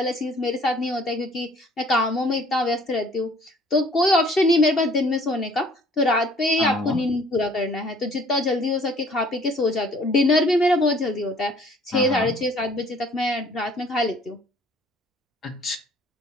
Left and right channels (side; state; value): both; normal; correlation 0.56